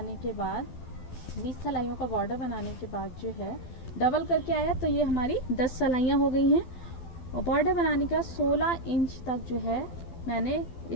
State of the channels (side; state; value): right; late; 12 ms